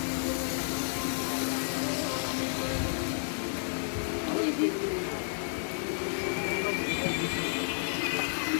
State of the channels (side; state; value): right; silent; digital silence